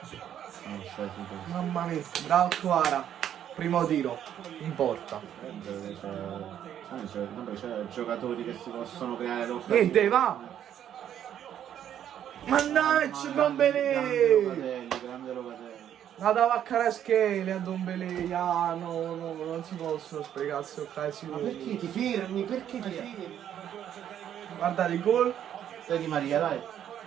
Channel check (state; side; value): quieter; left; 10.1 dB